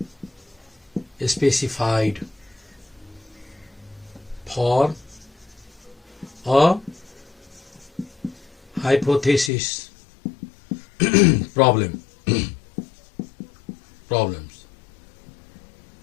specified for a hypothesis problems.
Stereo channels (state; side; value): drops out; right; at 9.5 s